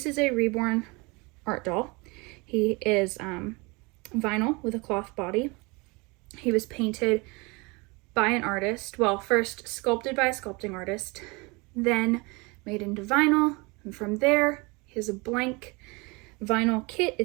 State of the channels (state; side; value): quieter; left; 27.0 dB